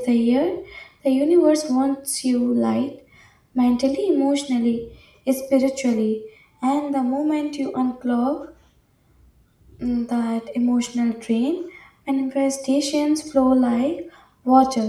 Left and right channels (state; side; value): identical; both; correlation 1.00